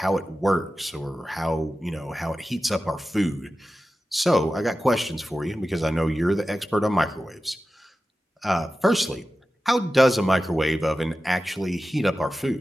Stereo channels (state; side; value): normal; both; correlation 0.93